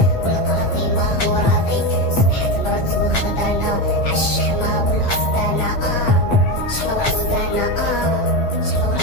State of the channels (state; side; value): late; right; 8.4 ms